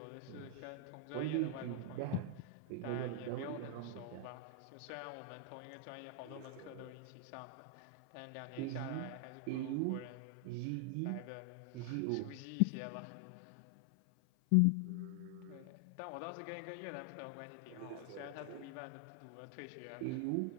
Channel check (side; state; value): both; different; correlation 0.00